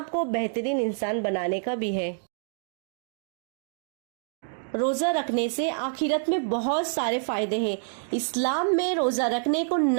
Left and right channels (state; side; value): silent; left; digital silence